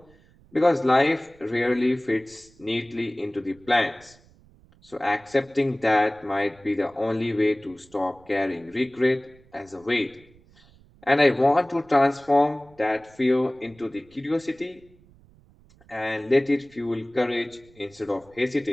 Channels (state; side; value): noise; right; rumble, 28 dB below the sound